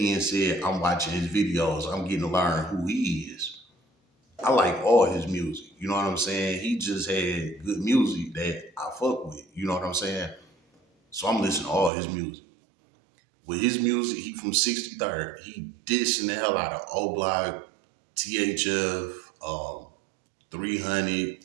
said, I'm watching his videos. I'm getting to learn who he is. I like all his music. You know what I'm saying? He just had good music that I fuck with. You know what I'm saying? So I'm listening to all his music. With his music, he from 63rd. He dissing the hell out of O-Block, THF, 300,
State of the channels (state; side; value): drops out; left; at 11.9 s